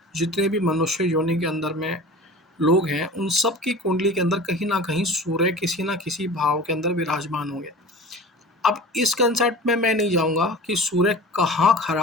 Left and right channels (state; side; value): normal; both; correlation 0.38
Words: जितने भी मनुष्य योनि के अंदर में लोग हैं, उन सब की कुंडली के अंदर कहीं ना कहीं सूर्य किसी ना किसी भाव के अंदर विराजमान होंगे। अब इस कंसेप्ट में मैं नहीं जाऊंगा कि सूर्य कहाँ